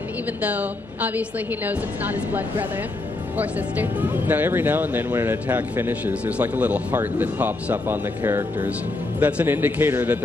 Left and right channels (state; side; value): quieter; right; 3.0 dB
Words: even though obviously he knows it's not his blood brother or sister. Now, every now and then when an attack finishes, there's like a little heart that pops up on the characters. That's an indicator that